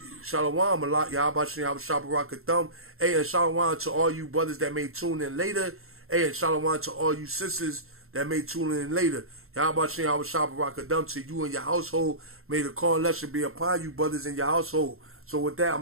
Shalom, Malak, Yahweh Shah Barakathum. Hey, and shalom to all you brothers that may tune in later. Hey, and shalom to all you sisters that may tune in later. Yahweh Shah Barakathum to you and your household. May the call lesson be upon you, brothers, in your household. So with that, I'm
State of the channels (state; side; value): late; left; 0.62 ms